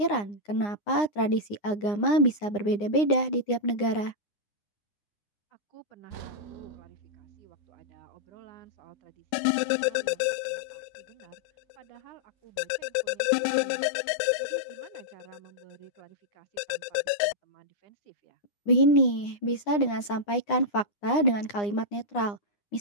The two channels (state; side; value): late; right; 9.8 ms